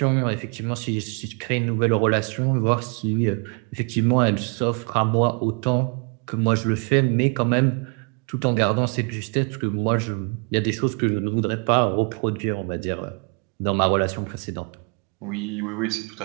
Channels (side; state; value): left; quieter; 36.7 dB